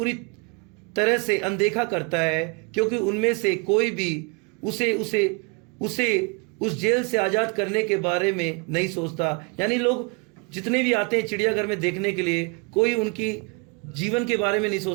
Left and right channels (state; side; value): quieter; left; 33.1 dB